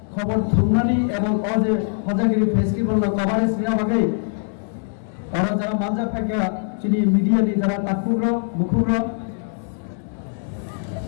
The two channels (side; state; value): right; silent; 64 dB below the other